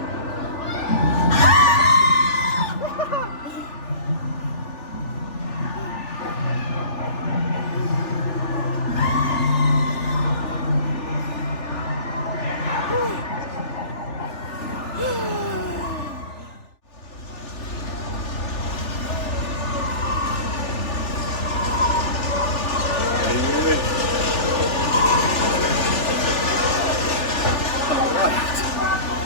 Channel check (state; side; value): late; right; 3.4 ms